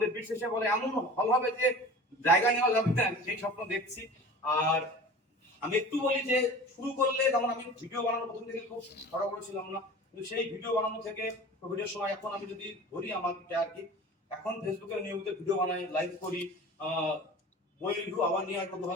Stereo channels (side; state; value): both; normal; correlation 0.39